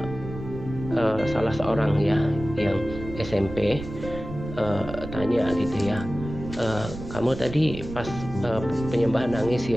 salah seorang ya yang SMP, tanya gitu ya, kamu tadi pas penyembahan nangis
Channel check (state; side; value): noise; right; rumble, 10 dB below the sound